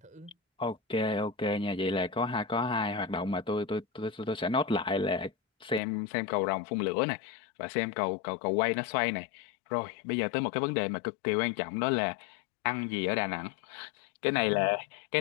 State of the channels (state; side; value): drops out; right; at 5.8 s